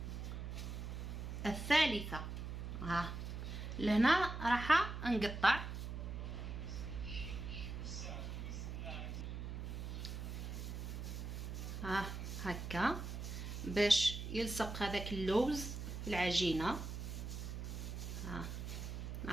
الثالثة. لهنا راح نقطع. هكا باش يلصق هذاك اللوز في العجينة.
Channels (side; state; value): right; noise; hum, 5 dB below the sound